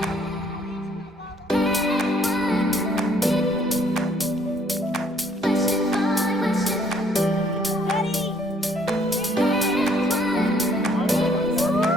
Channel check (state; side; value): normal; both; correlation 0.63